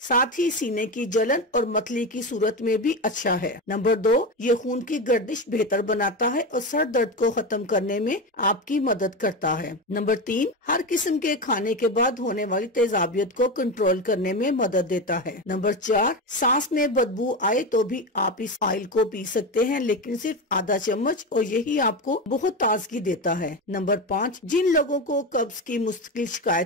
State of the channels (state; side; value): normal; both; correlation 0.19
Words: ही सीने की जलन और मतली की सूरत में भी अच्छा है। नंबर 2, ये खून की गर्दिश बेहतर बनाता है और सर दर्द को खत्म करने में आपकी मदद करता है। नंबर 3, हर किस्म के खाने के बाद होने वाली तेजाबियत को कंट्रोल करने में मदद देता है। नंबर 4, सांस में बदबू आए तो भी आप इस ऑयल को पी सकते हैं, लेकिन सिर्फ आधा चम्मच, और यही आपको बहुत ताजगी देता है। नंबर 5, जिन लोगों को कब्ज की मुस्तकिल